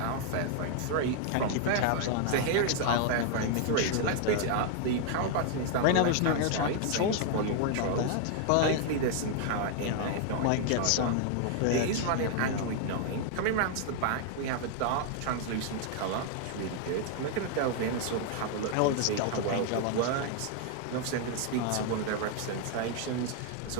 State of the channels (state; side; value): different; both; correlation 0.00